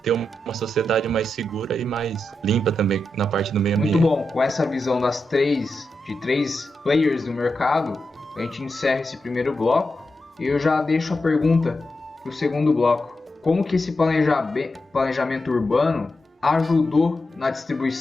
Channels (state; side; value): normal; both; correlation 0.88